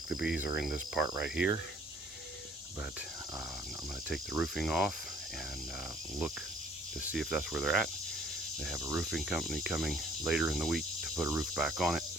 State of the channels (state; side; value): normal; both; correlation 0.59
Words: the bees are in this part right here, but I'm going to take the roofing off and look to see if that's where they're at. They have a roofing company coming later in the week to put a roof back on it,